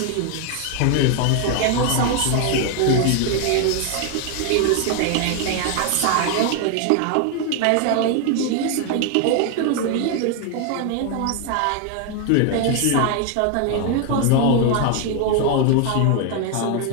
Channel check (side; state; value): both; different; correlation 0.01